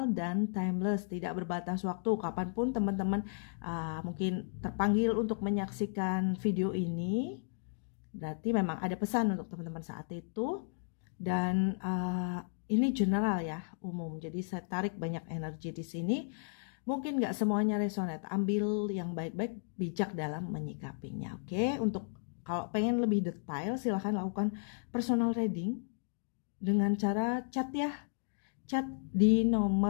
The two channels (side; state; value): right; silent; digital silence